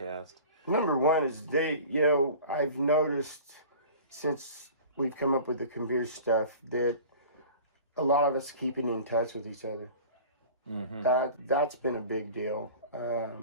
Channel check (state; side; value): inverted; both; correlation -0.41